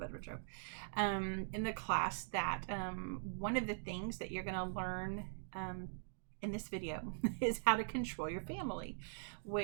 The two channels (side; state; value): left; silent; digital silence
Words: of a joke, in the class that one of the things that you're going to learn in this video is how to control your family,